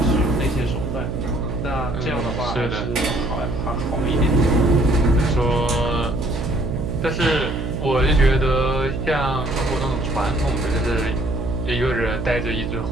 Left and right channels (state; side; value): noise; right; hum, 4 dB below the sound